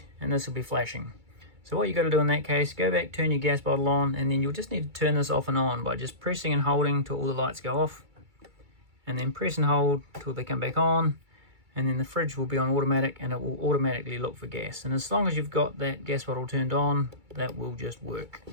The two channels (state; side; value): late; left; 2.3 ms